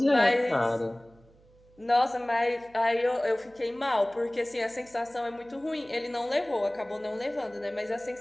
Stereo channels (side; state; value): right; noise; hum, 28 dB below the sound